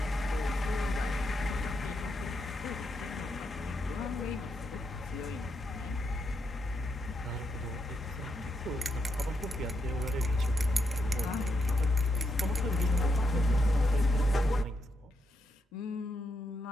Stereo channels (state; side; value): normal; both; correlation 0.81